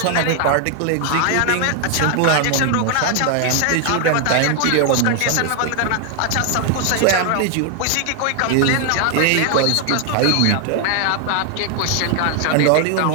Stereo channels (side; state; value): both; different; correlation 0.00